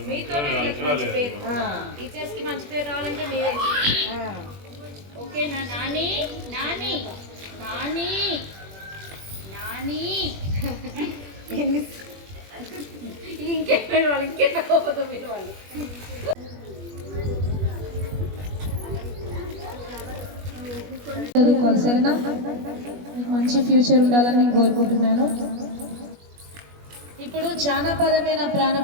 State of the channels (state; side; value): late; left; 21 ms